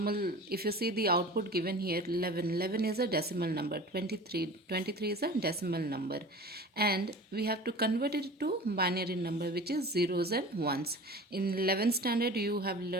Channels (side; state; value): both; normal; correlation 0.39